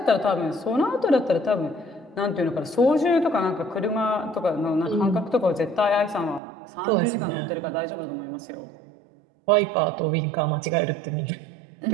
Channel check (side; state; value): left; drops out; at 6.4 s